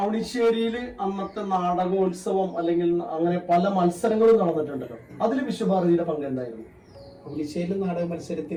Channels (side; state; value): both; identical; correlation 1.00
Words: അന്നത്തെ നാടകോത്സവം അല്ലെങ്കിൽ അങ്ങനെ പല മത്സരങ്ങളും നടന്നിട്ടുണ്ടല്ലോ, അതിൽ വിശ്വഭാരതിയുടെ പങ്ക് എന്തായിരുന്നു? അവണിശ്ശേരി നാടക